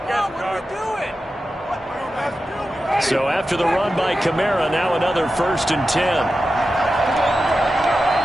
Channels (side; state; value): both; normal; correlation 0.92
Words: So after the run by Kamara, now another 1st and 10.